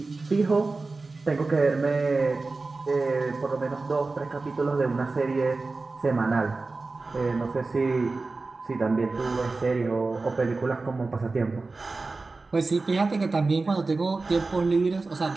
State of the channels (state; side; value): quieter; left; 3.7 dB